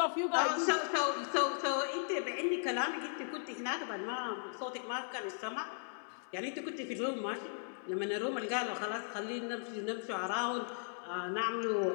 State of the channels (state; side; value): silent; right; digital silence